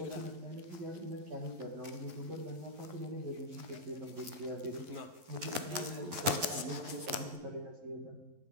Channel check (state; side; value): late; left; 11 ms